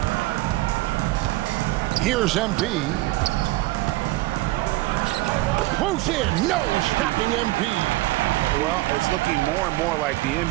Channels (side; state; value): left; quieter; 18.9 dB